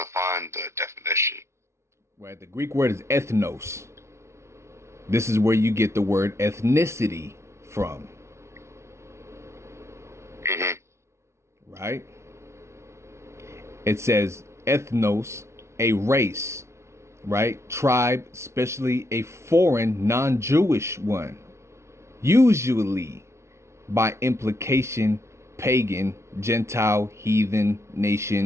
to find the definition. Right, the Greek word is ethnos. This is where you get the word ethnicity from. Mm-hmm. Right? It says ethnos, a race, right? Tribe, especially a foreign, non-Jewish one. Usually, by implication, pagan, Gentile, heathen,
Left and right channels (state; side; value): late; left; 0.13 ms